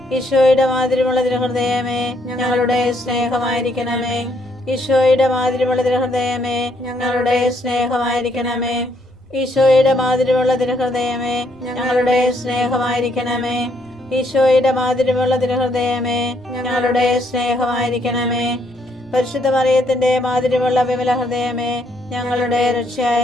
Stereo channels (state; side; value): normal; both; correlation 0.71